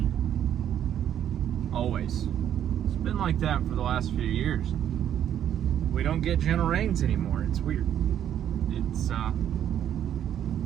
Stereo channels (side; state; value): left; quieter; 10.2 dB